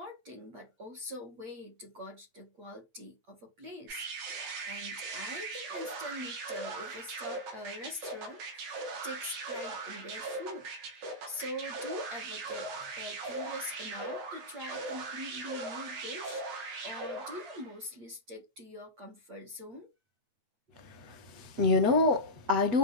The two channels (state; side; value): late; left; 8.6 ms